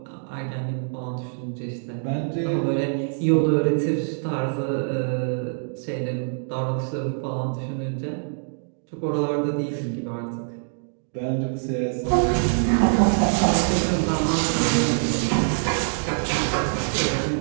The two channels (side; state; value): left; silent; digital silence